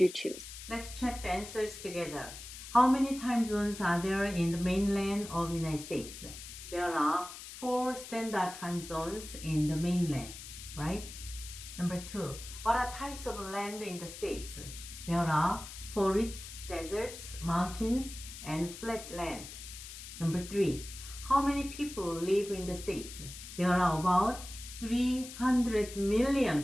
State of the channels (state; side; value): noise; left; hiss, 12 dB below the sound